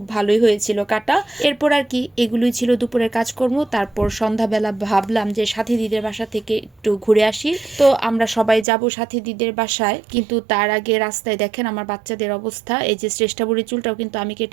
ভালোই হয়েছিল কাটা। এরপর আর কি এগুলোই ছিল দুপুরের কাজকর্ম। তারপর সন্ধ্যাবেলা ভাবলাম যে সাথী দিদির বাসা থেকে একটু ঘুরে আসি। তো আমরা সবাই যাব সাথী দিদির বাসায়, কিন্তু তার আগে রাস্তায় দেখেন আমার বাচ্চাদের অবস্থা। এই যে শ্রেষ্ঠা বুড়ির চুলটাও কিন্তু আমি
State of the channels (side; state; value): left; drops out; at 8.7 s